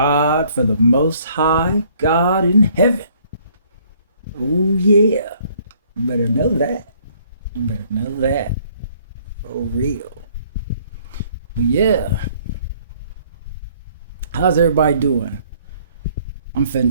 for the Most High God in heaven. Oh, yeah. You better know that. You better know that. For real. But yeah. How's everybody doing? I'm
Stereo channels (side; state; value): both; inverted; correlation -0.62